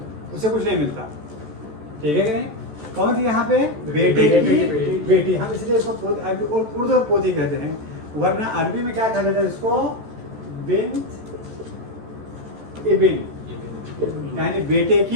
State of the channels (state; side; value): late; left; 14 ms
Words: उसे कुछ नहीं मिलता। ठीक है कि नहीं? कौन थी यहाँ पे? बेटे की बेटी। हम इसलिए इसको उर्दू में पोती कहते हैं, वरना अरबी में क्या कहा जाता है इसको? बिन्त इबिन, यानी बेटे